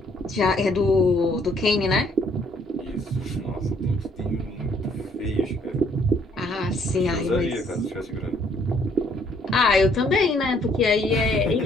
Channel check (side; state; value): both; normal; correlation 0.65